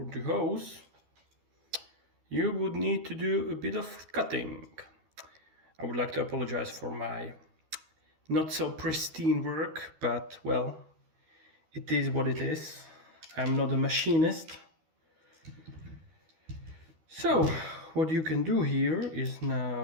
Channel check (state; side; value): late; left; 13 ms